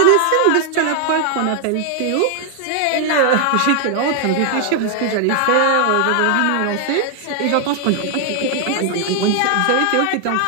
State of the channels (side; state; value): both; different; correlation 0.00